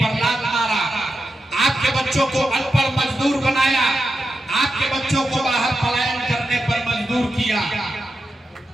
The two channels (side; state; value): both; normal; correlation 0.89